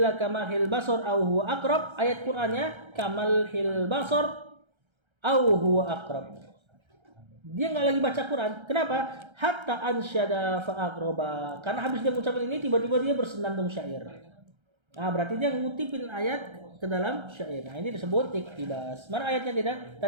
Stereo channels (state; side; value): late; left; 1.3 ms